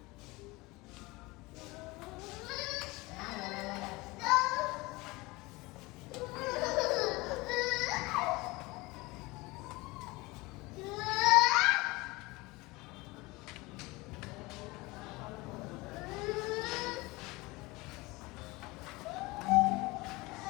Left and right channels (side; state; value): right; quieter; 22.7 dB